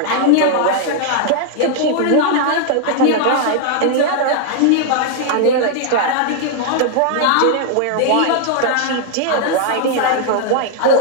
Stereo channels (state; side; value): different; both; correlation 0.00